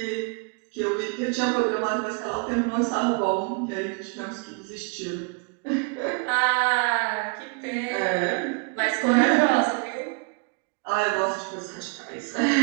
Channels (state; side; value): quieter; left; 34.3 dB